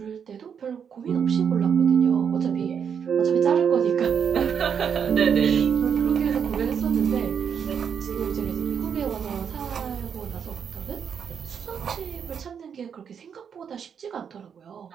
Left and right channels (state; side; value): quieter; left; 7.4 dB